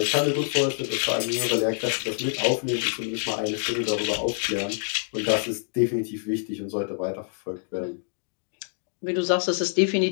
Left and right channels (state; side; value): silent; right; digital silence